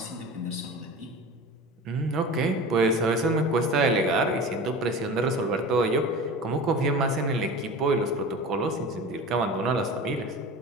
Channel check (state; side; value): normal; both; correlation 0.34